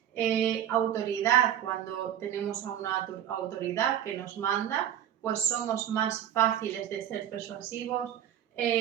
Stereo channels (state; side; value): quieter; left; 10.6 dB